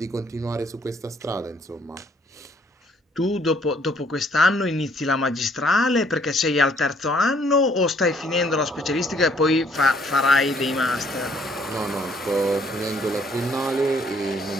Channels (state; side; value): normal; both; correlation 0.64